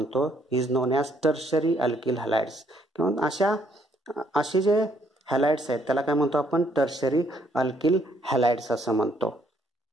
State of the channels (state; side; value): normal; both; correlation 0.68